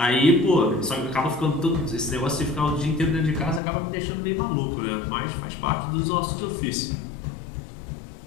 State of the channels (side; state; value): right; drops out; at 3.6 s